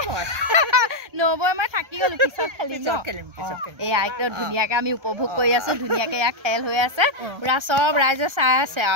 মই নবৌ মই থাকি গ'লোঁ পিছত খেলিম এয়া একদম ধুনীয়াকৈ আমি উপভোগ কৰি আছোঁ ধুনীয়াকৈ এয়া খেল হৈ আছে পূৰা চব ৰাইজে চাই আছে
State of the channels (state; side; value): late; left; 1.3 ms